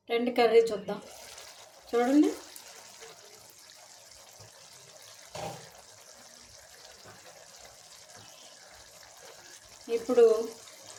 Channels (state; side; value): identical; both; correlation 1.00